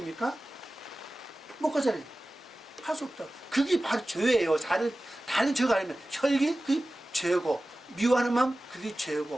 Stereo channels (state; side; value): normal; both; correlation 0.96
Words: 못 가잖아요. 갈 수 없다. 그게 바로 죄예요. 다른 죄가 아니면 혈기, 그게 죄고, 미워하는 마음, 그게